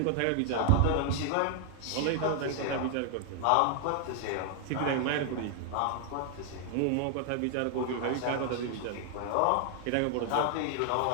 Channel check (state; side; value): different; both; correlation 0.00